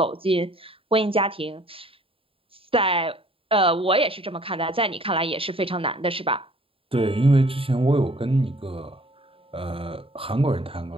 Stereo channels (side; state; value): left; late; 0.27 ms